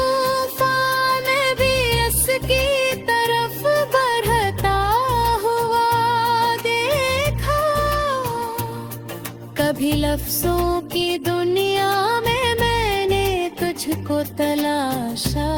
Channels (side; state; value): both; identical; correlation 1.00